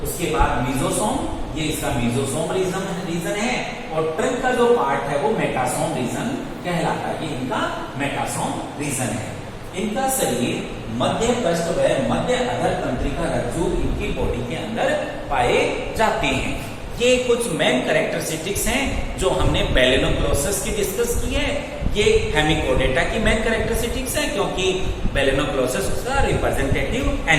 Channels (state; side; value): identical; both; correlation 1.00